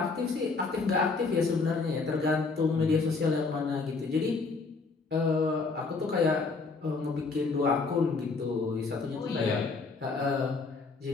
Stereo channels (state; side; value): quieter; right; 4.2 dB